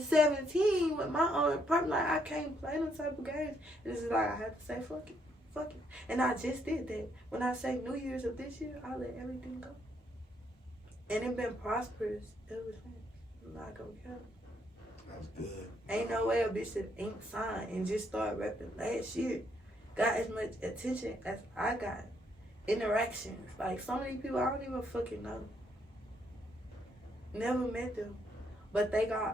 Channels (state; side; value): normal; both; correlation 0.73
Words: 17 with my own apartment. Like, I can't play them type of games. And it's like, I have to say, fuck it. Fuck it. And I just did that. When I say New Year's of this year, I let everything go. And it been prosperous ever since. I'm not gonna care. That's good. Ain't no way a bitch that ain't signed and just started rapping last year got as much attention as I got. Interactions. Like, so many people I don't even fucking know. Never met them. But